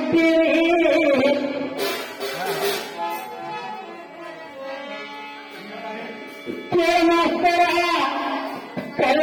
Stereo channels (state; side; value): identical; both; correlation 1.00